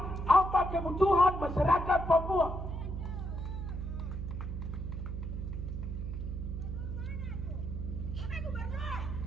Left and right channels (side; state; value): right; noise; hum, 5 dB below the sound